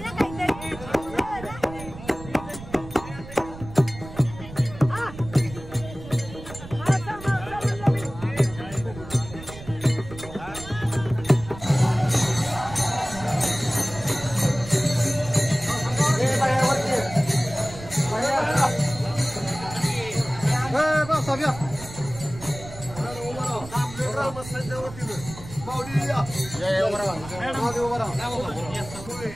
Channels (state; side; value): noise; right; rumble, 14 dB below the sound